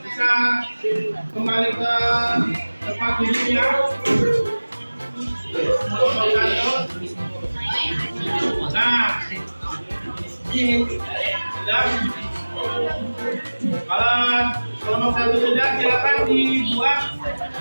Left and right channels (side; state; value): both; inverted; correlation -1.00